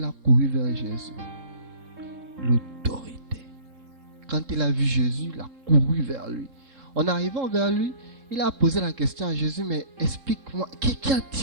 a couru vers Jésus. L'autorité. Quand il a vu Jésus, il a couru vers lui. En arrivant vers lui, il a posé la question à Jésus, mais explique-moi, qu'y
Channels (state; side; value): late; left; 3.7 ms